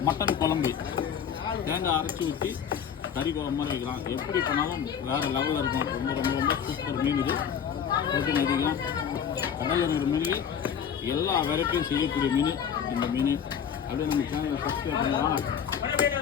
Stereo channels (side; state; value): right; quieter; 8.0 dB